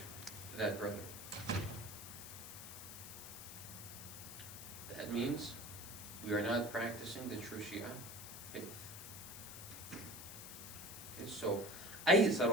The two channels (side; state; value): left; noise; hiss, 10 dB below the sound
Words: to that brother. That means we are not practicing the true Shia faith. Okay, so